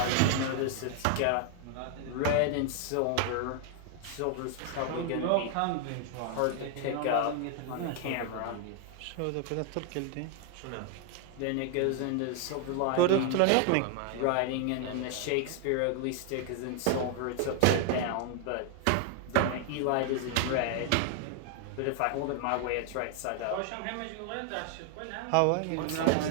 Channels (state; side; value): different; both; correlation 0.00